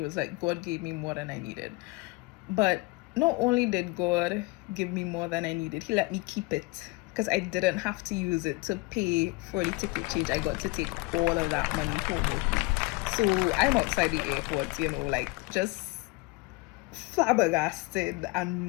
like, God gave me more than I needed. But not only did God give me more than I needed, he let me keep it, because I didn't have to use it to pay for the ticket change. I got to take all of that money home with me. So I'm outside the airport, like just flabbergasted and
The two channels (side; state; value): right; quieter; 24.6 dB